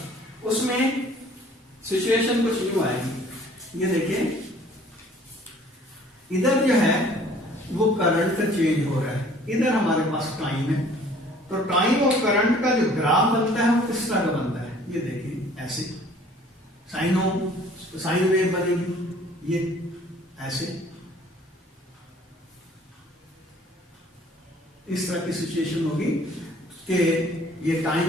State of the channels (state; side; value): normal; both; correlation 0.54